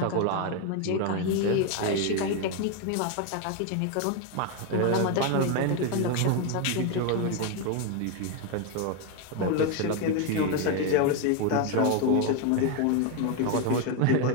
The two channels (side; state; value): both; different; correlation 0.01